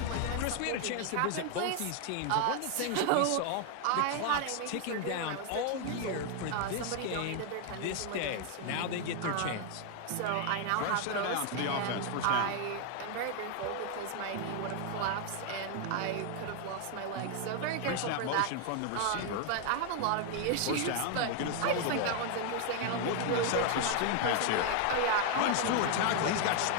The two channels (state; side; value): different; both; correlation 0.01